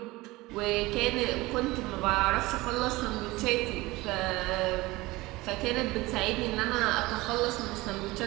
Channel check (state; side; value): quieter; left; 20.6 dB